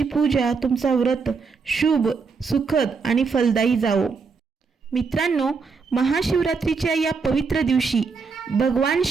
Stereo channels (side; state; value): left; quieter; 5.0 dB